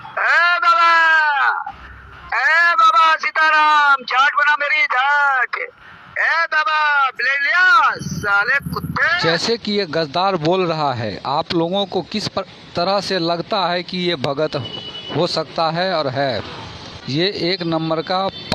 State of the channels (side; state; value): both; identical; correlation 1.00